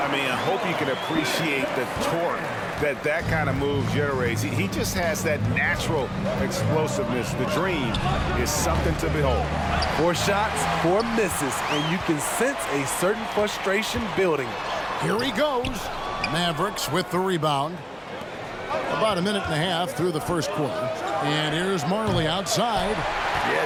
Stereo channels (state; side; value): identical; both; correlation 1.00